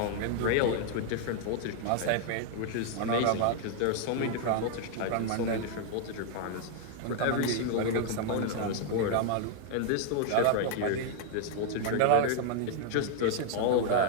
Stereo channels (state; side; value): different; both; correlation 0.00